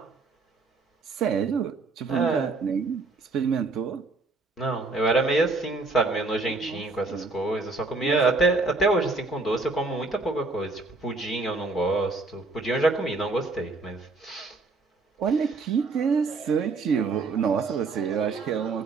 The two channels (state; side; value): quieter; left; 3.7 dB